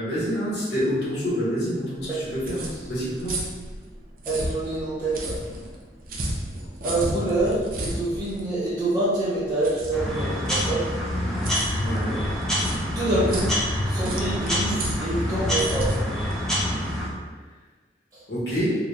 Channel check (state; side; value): normal; both; correlation 0.57